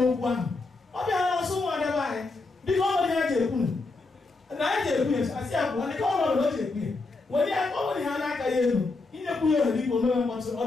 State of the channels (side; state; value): right; quieter; 3.6 dB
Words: ahụ. Ọ bịara n'ọsọ ụmụada be anyị dịka ọ nwere ihe a ji ekwu na anyị ji ekwu ya asị ya kwuo dịka ọnọdụ o ji ekwu ya were ya ọ nwere ihe a na-aka ya elu inyekwu ya ohere ikwu omeme mkpọtụ ọ